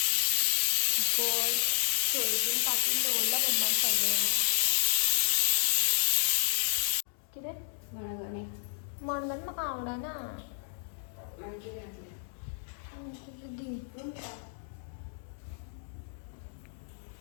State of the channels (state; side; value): silent; right; digital silence